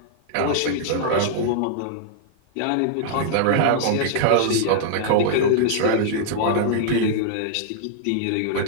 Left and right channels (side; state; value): both; different; correlation -0.01